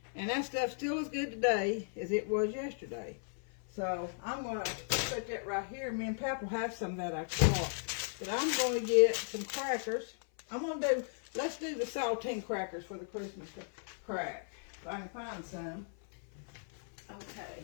And that stuff still as good today as it was yesterday. So I'm going to put that right here. Me and Pap will have some of that I caught. But I'm going to get some crackers. Let's do the saltine crackers for the Christmas crack. If I can find some.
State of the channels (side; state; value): right; silent; 54 dB below the other